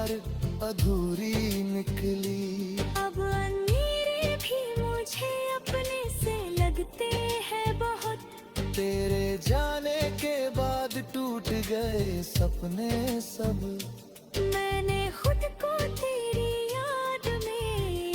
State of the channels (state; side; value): identical; both; correlation 1.00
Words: अधूरी निकली। अब अंधेरे भी मुझे अपने से लगते हैं बहुत, तेरे जाने के बाद टूट गए सपने सब। मैंने खुद को तेरी याद में